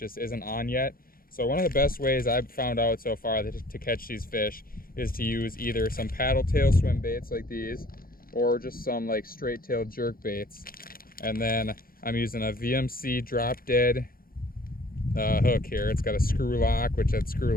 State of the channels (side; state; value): right; late; 0.42 ms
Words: isn't on yet. So one of the best ways I've found out so far to catch these fish is to use either some paddletail swim baits like these, or just some like straight tail jerk baits. And then I'm using a VMC drop dead hook here. It's got a screw lock, which that screw